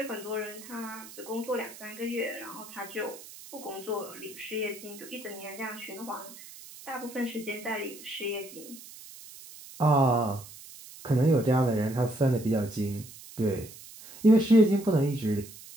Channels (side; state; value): right; noise; hiss, 17 dB below the sound